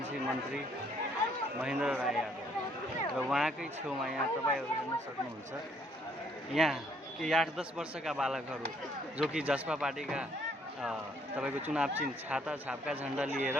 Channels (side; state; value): both; normal; correlation 0.67